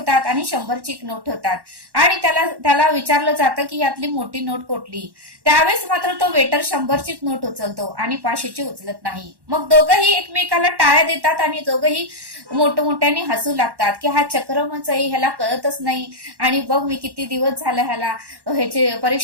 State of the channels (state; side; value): late; left; 1.1 ms